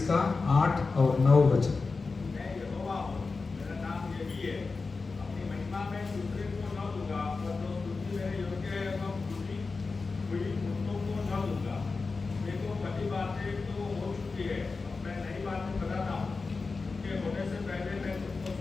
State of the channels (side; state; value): right; quieter; 4.2 dB